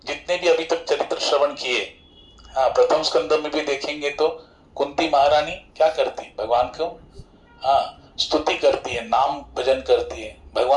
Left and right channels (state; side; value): identical; both; correlation 1.00